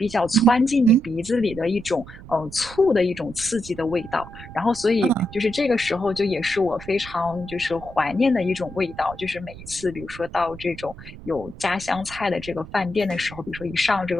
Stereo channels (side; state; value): right; noise; rumble, 16 dB below the sound